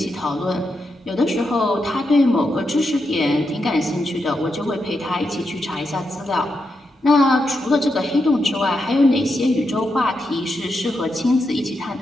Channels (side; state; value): both; normal; correlation 0.85